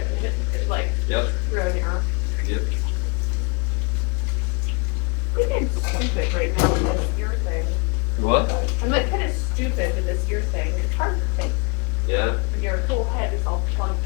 like Yep. ran the error. Yep. I'm getting stupid right now with this ear thing. What? I'm like kind of stupid with this ear thing. It's hard to think. Yeah. Your whole head is all plugged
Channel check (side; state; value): right; quieter; 30.3 dB